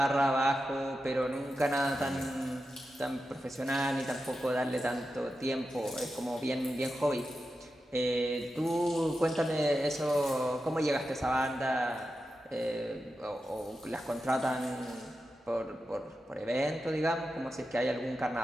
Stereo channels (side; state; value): both; normal; correlation 0.90